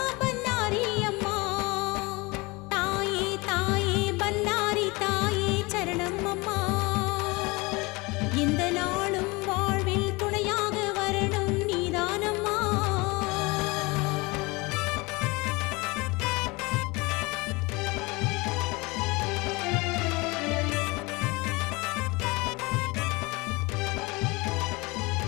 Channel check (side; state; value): right; quieter; 25.0 dB